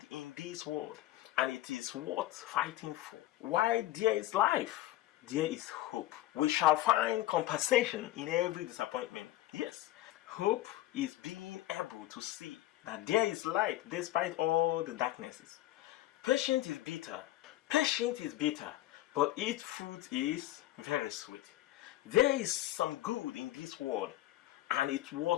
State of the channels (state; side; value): quieter; right; 15.4 dB